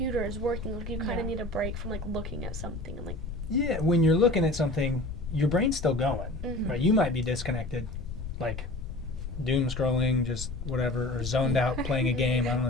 working, like you kind of need a break from like looking at something and like Yeah, when you're looking at something, your brain's still going, Mhm. right? You might be disconnected, like doom scrolling, just whatever, or zoned out playing a game. I don't know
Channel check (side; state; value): left; noise; rumble, 7 dB below the sound